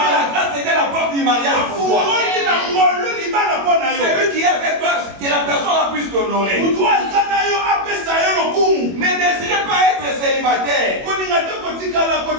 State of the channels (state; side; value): late; left; 21 ms